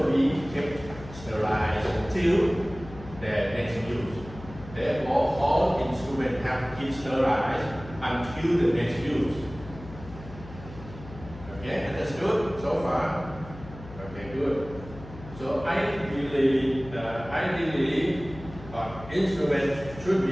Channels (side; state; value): left; noise; hum, 16 dB below the sound